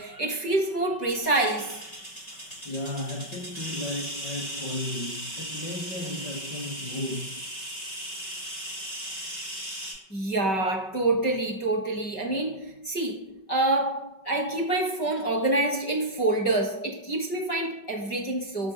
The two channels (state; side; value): late; right; 5.2 ms